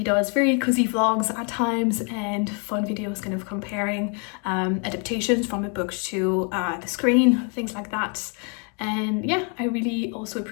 does very cozy vlogs at times and fun videos kind of comparing adaptations from a book to the screen, things like that. And yeah, I really also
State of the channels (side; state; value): right; quieter; 37.1 dB